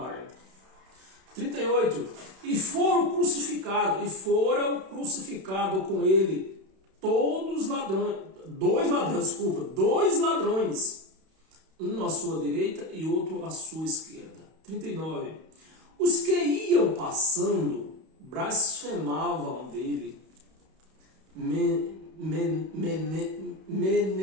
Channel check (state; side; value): late; left; 31 ms